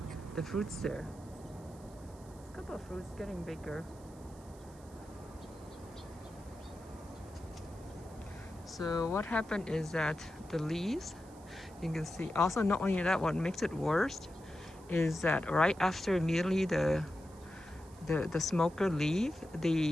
fruits there. A couple of fruits getting bigger. So what happened is that the leaves, you can see, also not only that, what makes it worse is that right after immediately the smoker leave,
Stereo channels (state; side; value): noise; right; hiss, 25 dB below the sound